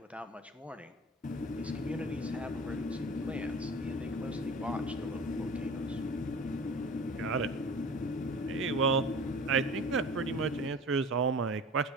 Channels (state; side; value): normal; both; correlation 0.40